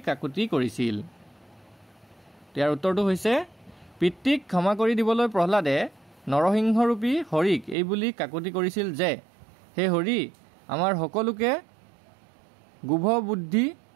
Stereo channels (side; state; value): left; drops out; at 7.8 s